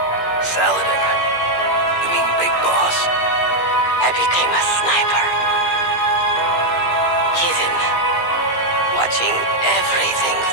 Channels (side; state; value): right; late; 17 ms